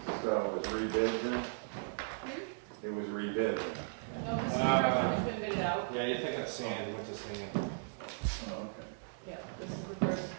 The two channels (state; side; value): silent; left; digital silence